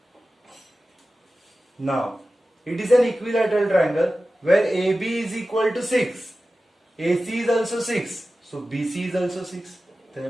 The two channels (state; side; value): normal; both; correlation 0.95